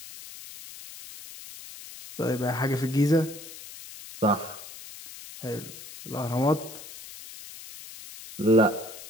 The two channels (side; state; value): left; noise; hiss, 15 dB below the sound